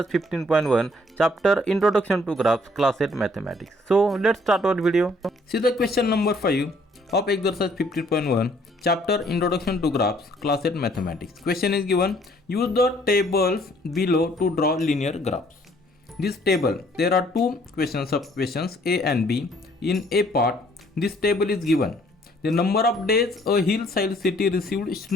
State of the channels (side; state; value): both; normal; correlation 0.62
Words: 15.1 chapter Introduction to Graphs class 8 Mathematics. So let's start our video. See the question number 5 of exercise 15.1 chapter Introduction to Graphs class 8 Mathematics. Question is given, use the tables below to draw linear graphs. This table, there are two sub-questions A and B. In A part, this table is given. The number of days a hillside city received